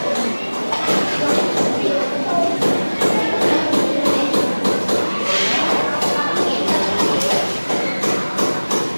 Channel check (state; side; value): inverted; both; correlation -1.00